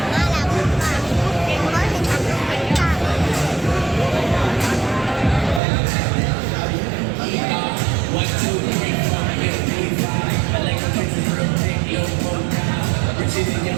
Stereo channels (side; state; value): left; drops out; at 5.6 s